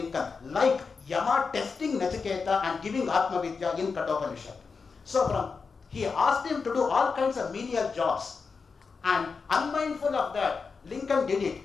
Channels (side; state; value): right; quieter; 5.0 dB